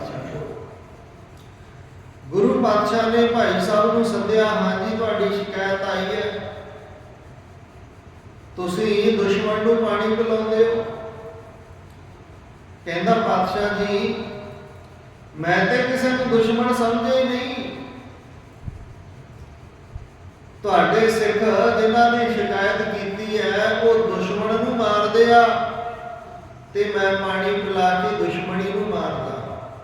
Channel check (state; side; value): identical; both; correlation 1.00